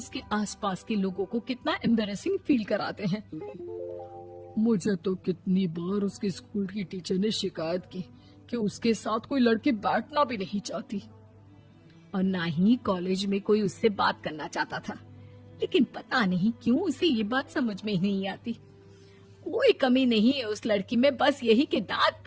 आसपास के लोगों को कितना एम्बैरेसिंग फील कराते हैं। मुझे तो कितनी बार उसके स्कूल की टीचर ने शिकायत की कि उसके साथ कोई लड़की बैठना भी नहीं चाहती और ना ही कॉलेज में कोई उससे बात करना चाहता था, लेकिन पता नहीं क्यों उसे ये बात समझ में ही नहीं आती। कोई कमी नहीं है उस लड़की में, बस यही कि दांत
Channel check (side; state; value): both; identical; correlation 1.00